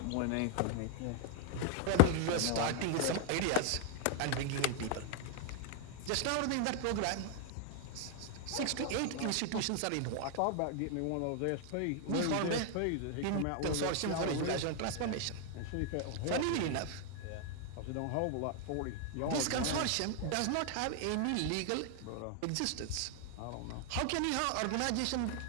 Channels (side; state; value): both; different; correlation 0.00